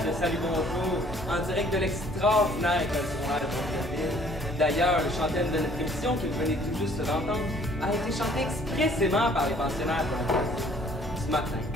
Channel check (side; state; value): both; normal; correlation 0.58